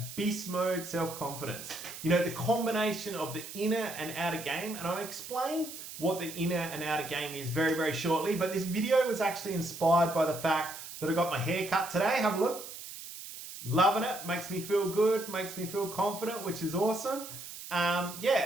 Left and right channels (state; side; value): noise; right; hiss, 11 dB below the sound